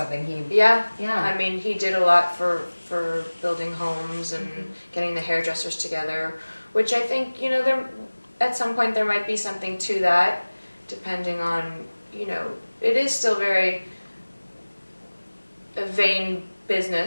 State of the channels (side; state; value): both; inverted; correlation -1.00